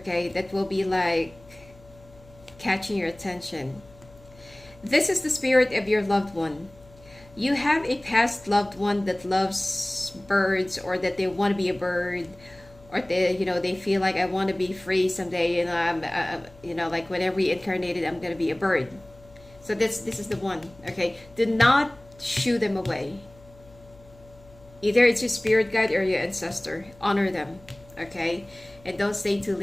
that will be like catching your attention. This is the spirit of your loved one. You have a past loved one that loves birds, or that they want to be a bird, or they feel like, I want to be free someday, I'm like when I reincarnated, I'm going to be a bird. So this is the one, okay? Do not shoo them away. Either it's your spirit guide or your ancestor. Honor them, okay? And don't stay too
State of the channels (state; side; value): noise; left; hum, 24 dB below the sound